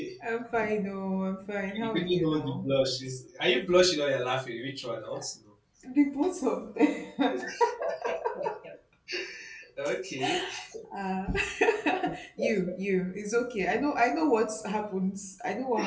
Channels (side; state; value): both; identical; correlation 1.00